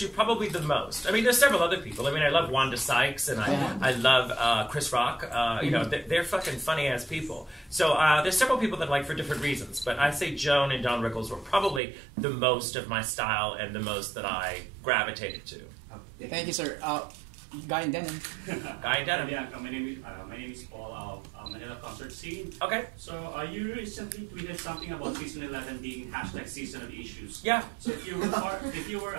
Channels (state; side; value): drops out; left; at 11.8 s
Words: probably the most. I mean, there's several other people. I mean, I love Wanda Sykes, and I love Chris Rock. You know, they're fucking funny-ass people. So there's several people that I like for different reasons, but I say Joan and Don Rickles were probably the most of my style and the most that I gravitated to. Thank you, sir. Guy in denim. Guy in denim. Bianca, my name is Paul of Manila concert scene. Okay. So you recently tweeted something about season 11 being # season of issues. Yeah. So if you were part